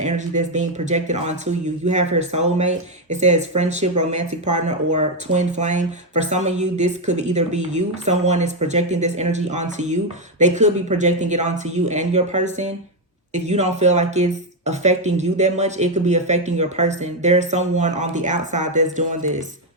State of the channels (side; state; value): both; normal; correlation 0.05